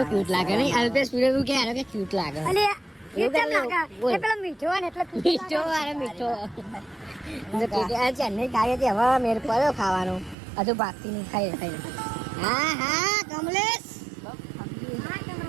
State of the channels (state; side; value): drops out; left; at 10.4 s